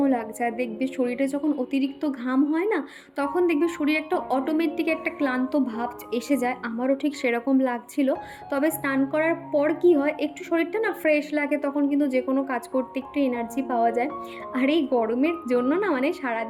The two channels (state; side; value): identical; both; correlation 1.00